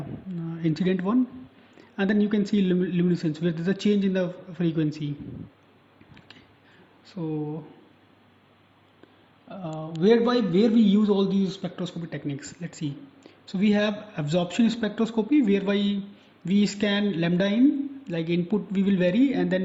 incident one. And then you can see luminescence, where there's a change in the frequency. Okay. So where we use all these spectroscopy techniques. Let's see. So we have absorption spectroscopy, whereby we scan lambda in, like input we will vary, and then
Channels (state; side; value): identical; both; correlation 1.00